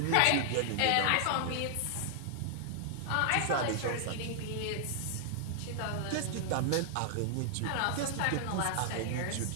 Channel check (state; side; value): different; both; correlation 0.00